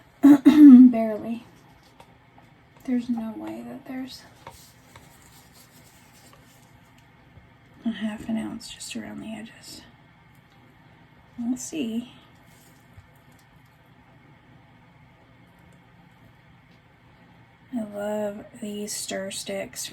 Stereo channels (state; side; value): identical; both; correlation 1.00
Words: Barely. There's no way that there's a 1/2 ounce just around the edges. We'll see. I love these stir sticks